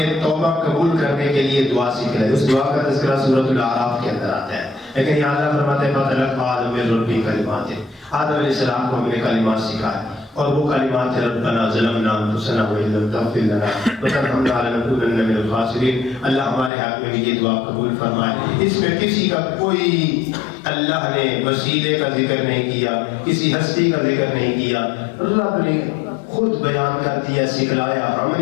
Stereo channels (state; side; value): drops out; right; at 16.7 s